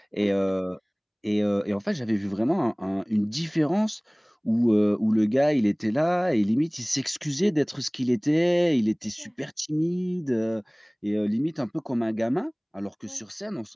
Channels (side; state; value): both; identical; correlation 1.00